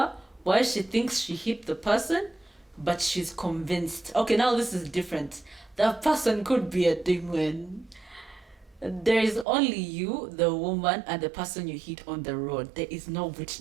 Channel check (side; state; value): left; drops out; at 9.5 s